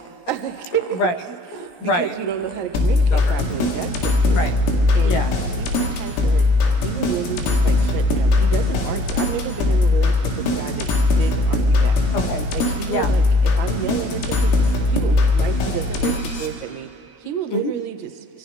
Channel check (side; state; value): right; late; 17 ms